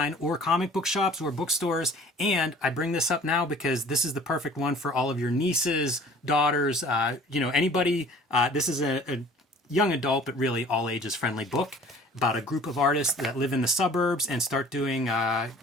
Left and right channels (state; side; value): normal; both; correlation 0.49